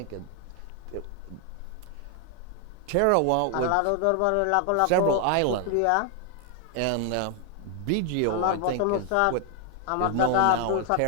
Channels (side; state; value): both; different; correlation 0.00